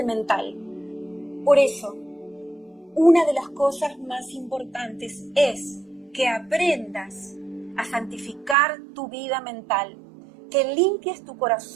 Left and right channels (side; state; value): left; drops out; at 8.6 s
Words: mental. Por eso, una de las cosas más importantes es que aprendas a santificar tu vida mental, que limpies tu